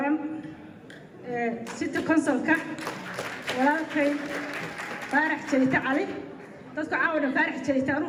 ستة كونسل ولكن فارح جيت علي dadku caawina faarax jeeyta anu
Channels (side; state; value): both; identical; correlation 1.00